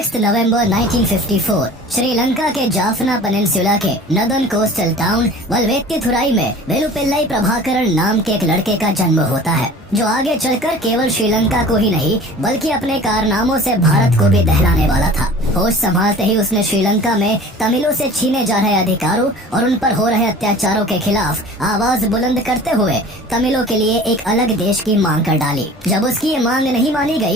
नवंबर 1954 श्रीलंका के जाफना पेनिनसुला के नदन कोस्टल टाउन वल्वेत्तिथुराई में वेलुपिल्लाई प्रभाकरण नाम के एक लड़के का जन्म होता है, जो आगे चलकर केवल श्रीलंका को ही नहीं बल्कि अपने कारनामों से भारत को भी दहलाने वाला था। होश संभालते ही उसने श्रीलंका में तमिलों से छीने जा रहे अधिकारों और उन पर हो रहे अत्याचारों के खिलाफ आवाज बुलंद करते हुए तमिलों के लिए एक अलग देश की मांग कर डाली। जब उसकी ये मांग नहीं मानी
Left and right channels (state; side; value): normal; both; correlation 0.43